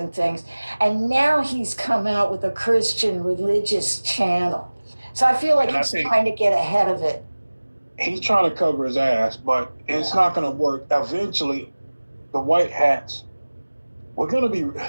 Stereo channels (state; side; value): inverted; both; correlation -1.00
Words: things. And now he's come out with a Christian religious channel. So I feel like he's trying to get ahead of it. He's trying to cover his ass, but it's not going to work. Eventually, the White Hats, we're